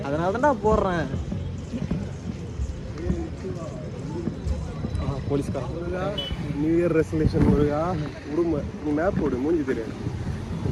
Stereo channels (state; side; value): identical; both; correlation 1.00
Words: அதனால தான் நான் போடுறேன். போலீஸ்காரன் நியூ இயர் ரெசல்யூஷன் முருகா விடுமா? நீ மேப் போடு, மூஞ்சி தெரியாது.